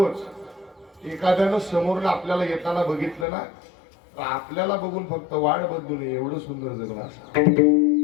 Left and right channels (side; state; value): right; drops out; at 3.2 s